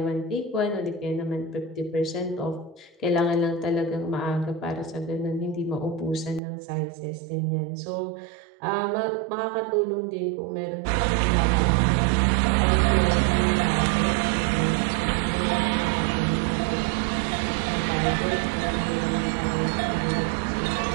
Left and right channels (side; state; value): left; drops out; at 6.4 s